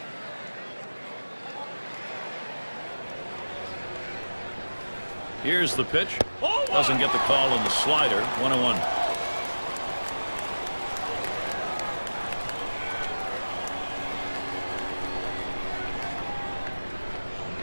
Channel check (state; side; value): inverted; both; correlation -1.00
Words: Here's the pitch. Doesn't get the call on the slider. 1-1.